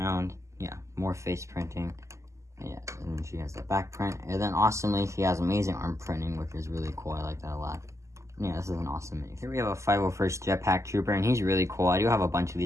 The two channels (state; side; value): late; left; 0.14 ms